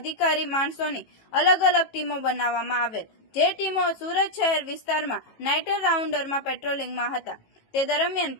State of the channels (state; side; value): late; right; 18 ms